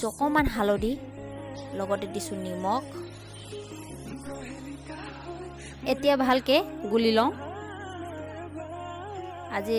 অকণমান হালধি, লগতে দিছোঁ নিমখ। এতিয়া ভালকৈ গুলি লওঁ।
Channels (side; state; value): both; identical; correlation 1.00